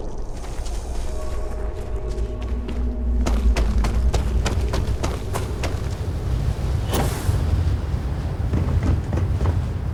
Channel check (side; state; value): both; identical; correlation 1.00